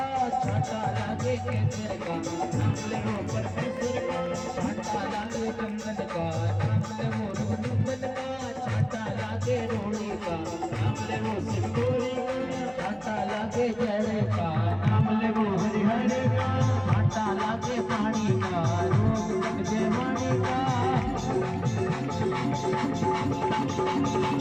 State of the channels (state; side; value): noise; right; hum, 26 dB below the sound